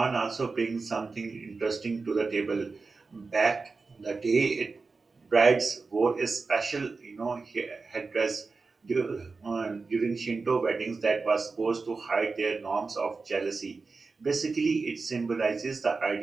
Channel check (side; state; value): left; quieter; 4.2 dB